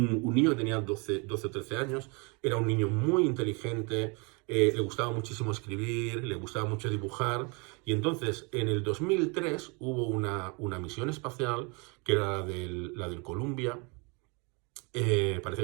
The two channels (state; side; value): quieter; left; 31.2 dB